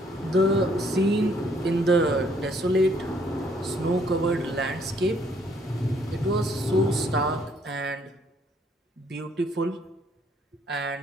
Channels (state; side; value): normal; both; correlation 0.66